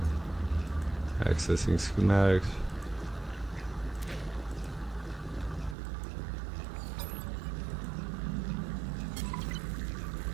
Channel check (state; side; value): drops out; left; at 5.8 s